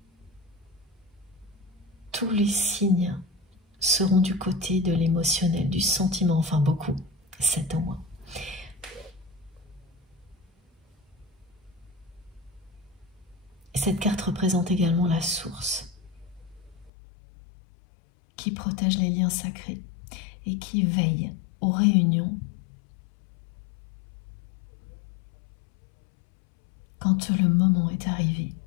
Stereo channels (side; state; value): right; drops out; at 16.9 s